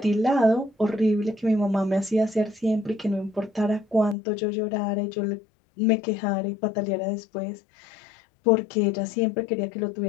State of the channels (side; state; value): right; drops out; at 4.2 s